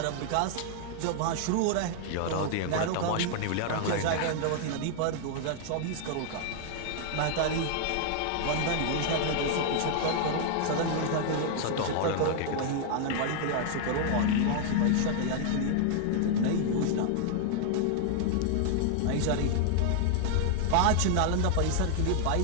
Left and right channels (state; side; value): different; both; correlation 0.00